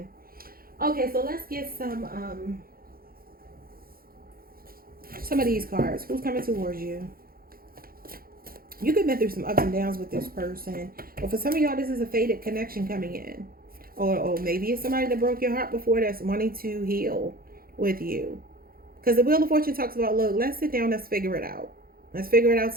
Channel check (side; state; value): left; late; 0.43 ms